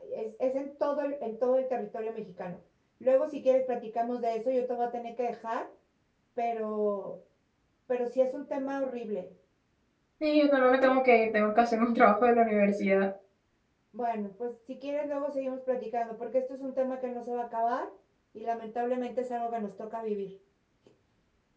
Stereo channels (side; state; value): both; identical; correlation 1.00